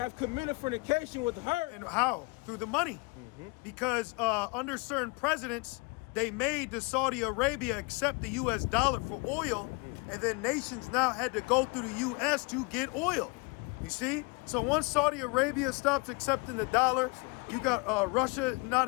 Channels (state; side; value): quieter; right; 29.0 dB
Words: committed fornication with her. And how? Through the money. Because under certain presidents, they made the Saudi Arabia accept the US dollar for oil, and then nations now had to go through the US to get oil. You see? So once Saudi Arabia stops accepting the dollar, you got Russia